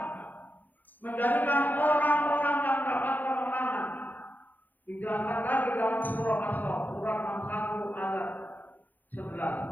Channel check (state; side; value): late; right; 0.086 ms